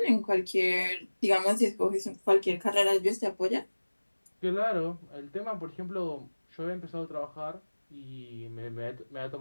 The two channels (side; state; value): both; inverted; correlation -1.00